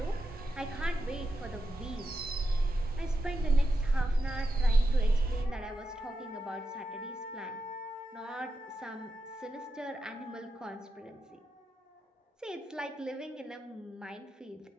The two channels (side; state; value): both; normal; correlation 0.88